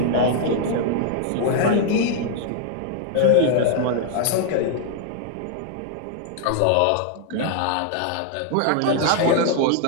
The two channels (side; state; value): both; different; correlation 0.00